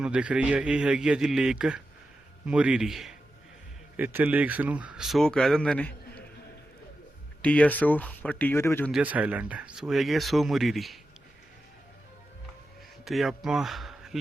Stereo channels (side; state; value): both; normal; correlation 0.91